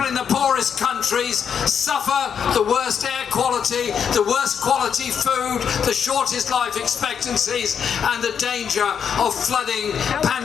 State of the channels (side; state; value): right; quieter; 7.5 dB